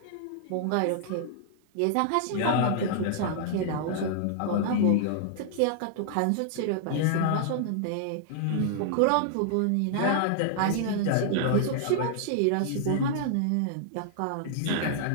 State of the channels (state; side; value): different; both; correlation -0.01